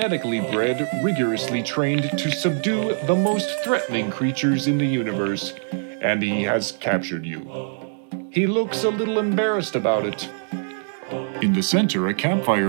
bred, rigorously trained to subdue the most threatening creatures in the universe, and he has captured you. He looks a little embarrassed about it. In the center, a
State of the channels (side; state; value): left; silent; digital silence